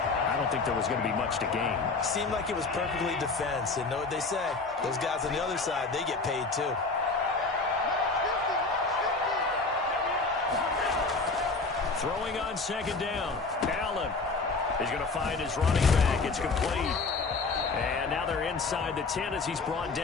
I don't think there was going to be much to gain. Seemed like it was perfectly defense. And know what they say? Those guys on the other side, they get paid too. Throwing on second down. Allen. He's going to find his running back. It's complete. And now they're inside the 10 as he's brought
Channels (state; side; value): quieter; right; 3.9 dB